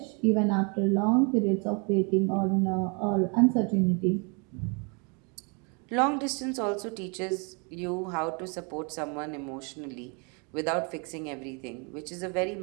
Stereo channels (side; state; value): left; quieter; 33.8 dB